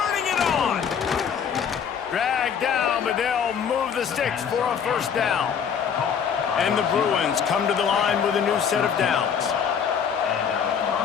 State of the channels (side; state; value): right; quieter; 7.4 dB